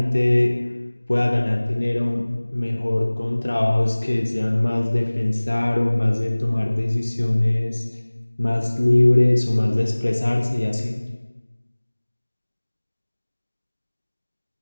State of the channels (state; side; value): inverted; both; correlation -1.00